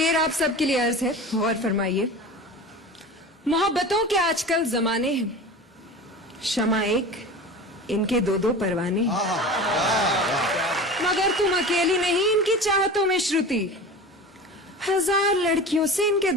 आप सबके लिए अर्ज है, गौर फरमाइए। मोहब्बतों के आजकल जमाने हैं, शमा एक, इनके दो दो परवाने हैं। मगर तुम अकेली नहीं इनकी चाहतों में श्रुति, 1000 लड़कियों से इनके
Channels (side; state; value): both; normal; correlation 0.34